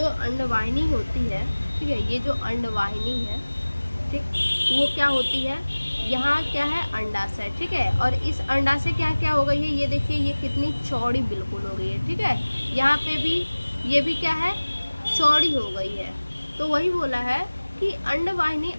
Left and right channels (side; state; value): both; inverted; correlation -1.00